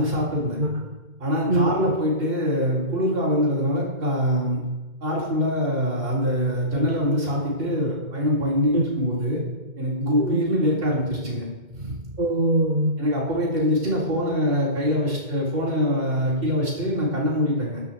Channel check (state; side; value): late; left; 2.1 ms